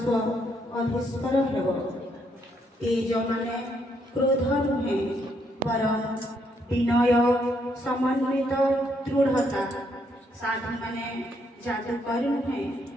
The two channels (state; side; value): normal; both; correlation 0.73